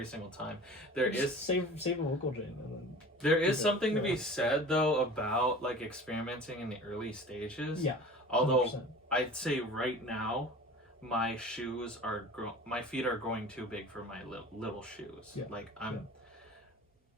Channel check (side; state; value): both; normal; correlation 0.40